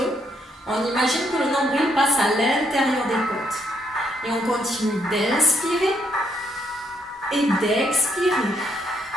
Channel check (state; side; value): normal; both; correlation 0.72